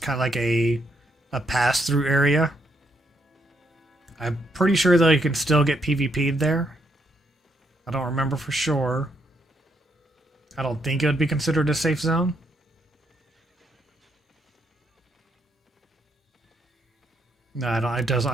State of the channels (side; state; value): both; normal; correlation 0.75